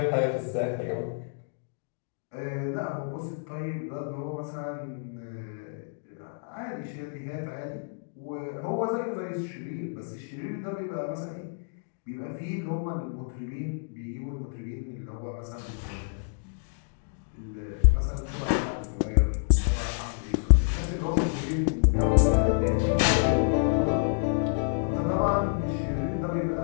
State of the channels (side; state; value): right; silent; digital silence